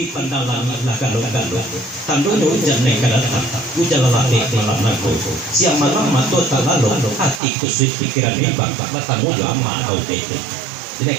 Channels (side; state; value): left; drops out; at 7.4 s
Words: pandalan galong-galong tandono jane kadatan ujalalate malam nago siang malam mato talalong hati kusut pikiran bimbang matamu jo amma au tete ini